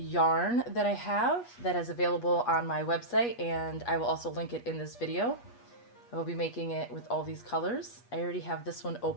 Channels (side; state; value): right; late; 8.3 ms